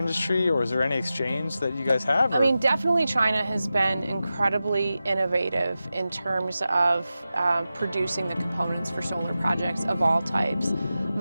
or is there any exchange that you guys have? I mean, definitely China has been incredibly innovative in terms of producing the components for solar projects of all types.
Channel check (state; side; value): inverted; both; correlation -0.93